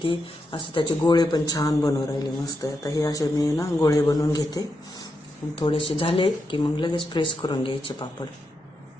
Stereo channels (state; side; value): normal; both; correlation 0.85